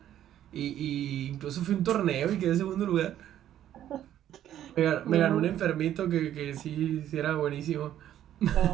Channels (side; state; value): left; quieter; 11.5 dB